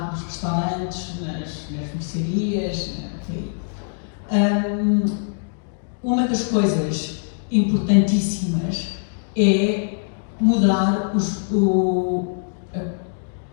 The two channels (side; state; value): right; silent; digital silence